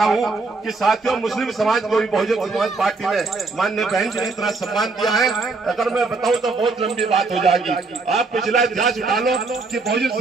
हूँ कि साथियों, मुस्लिम समाज को भी बहुजन समाज पार्टी ने माननीय बहन जी ने इतना सम्मान दिया है। अगर मैं बताऊं तो बहुत लंबी बात हो जाएगी। आप पिछला इतिहास उठा लो कि बहुजन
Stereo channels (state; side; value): quieter; left; 3.9 dB